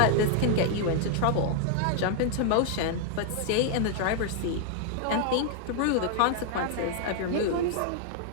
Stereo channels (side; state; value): both; different; correlation 0.00